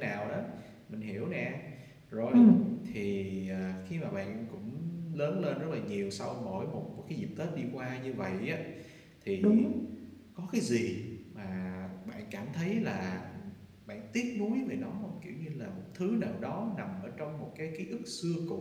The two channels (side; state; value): both; identical; correlation 1.00